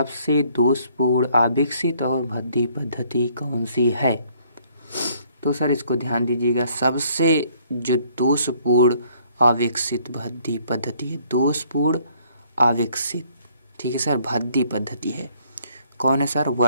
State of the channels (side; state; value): both; inverted; correlation -0.63